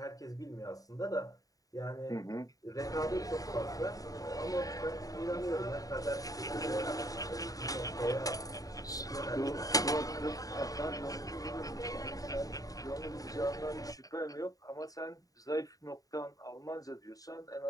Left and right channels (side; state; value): right; late; 0.17 ms